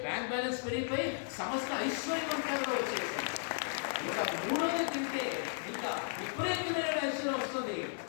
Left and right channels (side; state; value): right; silent; digital silence